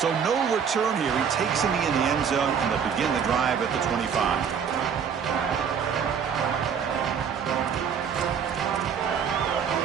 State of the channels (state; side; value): quieter; left; 7.2 dB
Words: So no return here. He takes it in the end zone, and they'll begin the drive at the 25.